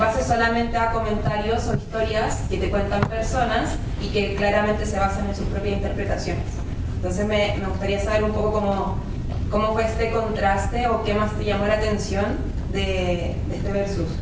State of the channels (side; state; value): both; identical; correlation 1.00